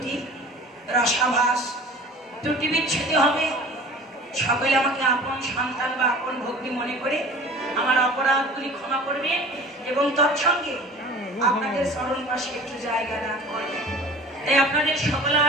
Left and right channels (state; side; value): normal; both; correlation 0.42